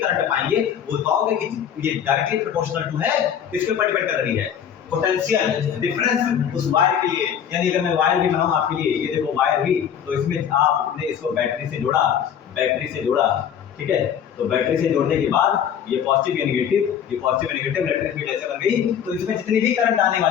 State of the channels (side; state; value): right; quieter; 8.7 dB